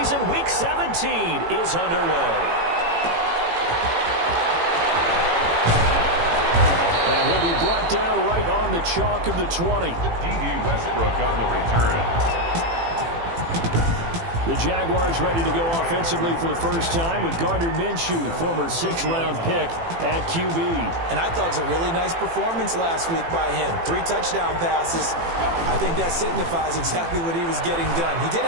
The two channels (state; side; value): late; left; 18 ms